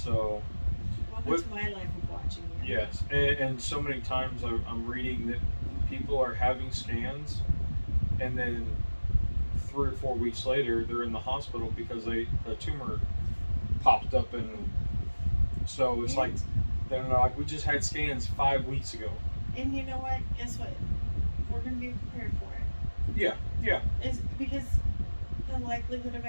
Welcome to my life of watching you. Yes, and so many times I'm reading that people are having scans, and then 3 or 4 weeks later they're in the hospital because the tumor popped up, and so it's like they're like, we just had scans 5 weeks ago. And you know what? Guess what? We're going to be prepared for it. Yeah, yeah. It's because the likelihood of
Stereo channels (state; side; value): inverted; both; correlation -1.00